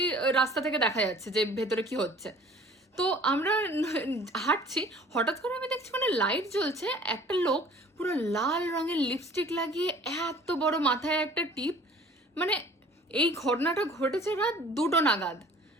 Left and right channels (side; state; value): both; normal; correlation 0.50